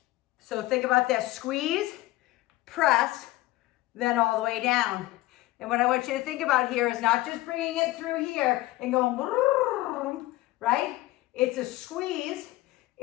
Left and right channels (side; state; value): right; quieter; 17.9 dB